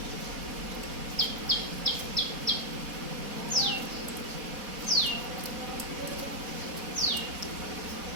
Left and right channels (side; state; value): left; late; 4.1 ms